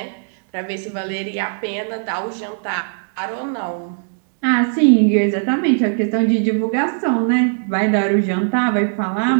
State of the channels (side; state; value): left; silent; 63 dB below the other